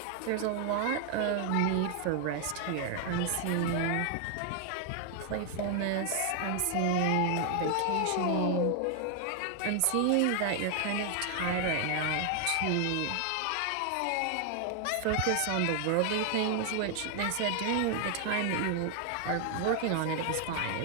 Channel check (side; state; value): both; different; correlation 0.00